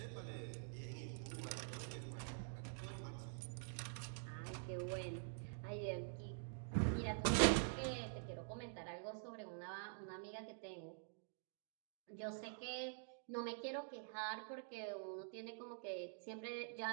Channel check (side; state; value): left; silent; digital silence